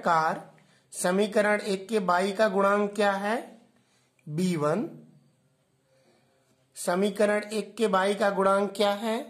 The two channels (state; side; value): identical; both; correlation 1.00